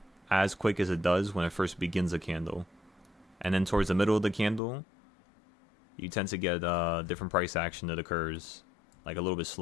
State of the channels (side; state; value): right; drops out; at 4.6 s